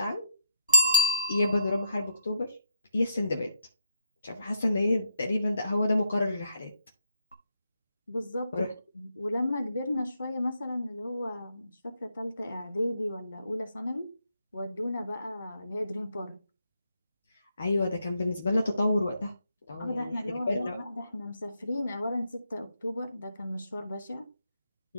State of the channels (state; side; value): inverted; both; correlation -0.79